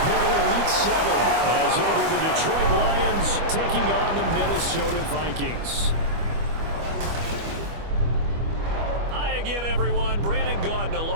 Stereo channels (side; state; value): left; late; 25 ms